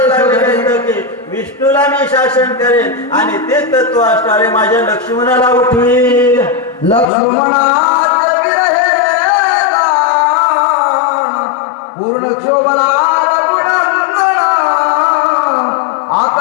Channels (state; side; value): drops out; right; at 7.1 s